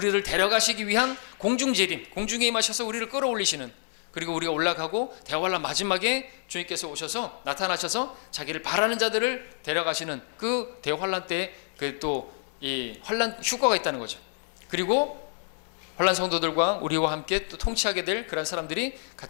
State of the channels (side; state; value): right; silent; digital silence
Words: 데려가시기 위한 공중 재림, 공중에 임하셔서 우리를 끌어올리시는, 그리고 우리가 올라가고 대환란 마지막에 주님께서 오셔서 나타나셔서 자기를 바라는 자들을 데려가시는 그 대환란 때 그 또 이 환란 휴거가 있다는 거죠. 그리고 환란 성도들과 우리와 함께 또 통치하게 될 그런 사람들이